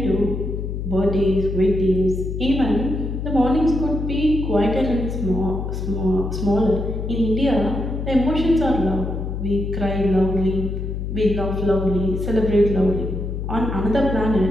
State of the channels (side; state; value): left; noise; hum, 4 dB below the sound